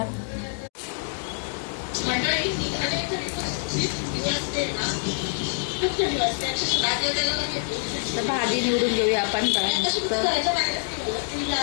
तर भाजी निवडून घेऊया आपण.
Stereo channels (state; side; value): silent; right; digital silence